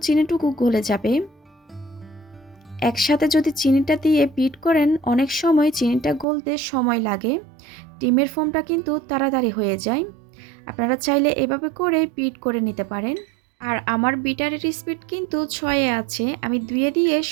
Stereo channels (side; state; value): left; drops out; at 6.2 s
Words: চিনিটুকু গলে যাবে। একসাথে যদি চিনিটা দিয়ে বিট করেন অনেক সময় চিনিটা গলতে সময় লাগে, ডিমের ফোমটা কিন্তু তাড়াতাড়ি হয়ে যায়। আপনারা চাইলে এভাবে করে বিট করে নিতে পারেন। আর আমার বিটারের স্পিড কিন্তু 6-এ আছে, আমি 2-এ দিয়ে